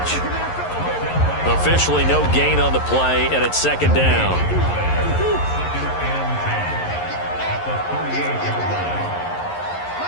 Officially no gain on the play, and it's 2nd down.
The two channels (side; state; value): right; late; 11 ms